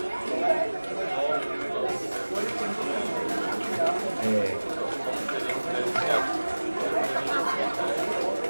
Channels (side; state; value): both; inverted; correlation -1.00